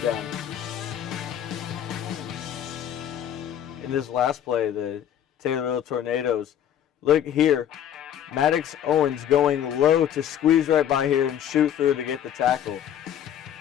down. In this last play, the Taylorville Tornadoes, look here. Maddox Owens going low to squeeze right by here and shoot through to get the tackle.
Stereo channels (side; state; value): right; quieter; 10.1 dB